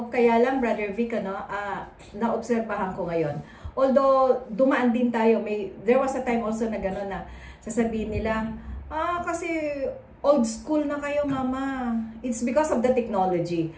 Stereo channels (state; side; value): identical; both; correlation 1.00